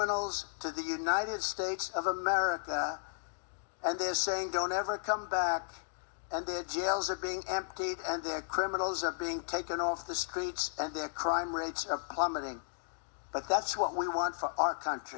to the United States of America, and they're saying, don't ever come back, and their jails are being emptied, and their criminals are being taken off the streets, and their crime rates are plummeting. But that's what we want for our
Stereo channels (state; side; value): silent; right; digital silence